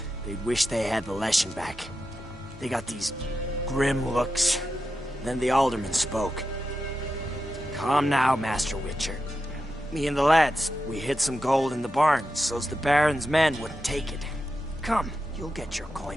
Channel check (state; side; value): normal; both; correlation 0.89